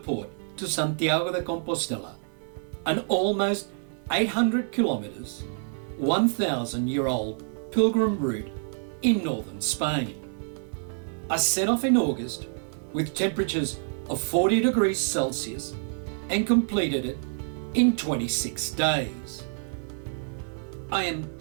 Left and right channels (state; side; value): silent; left; 59 dB below the other